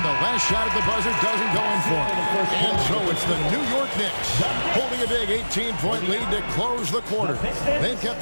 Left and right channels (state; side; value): inverted; both; correlation -1.00